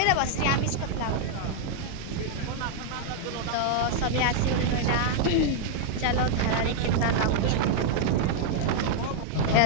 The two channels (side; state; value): both; different; correlation -0.01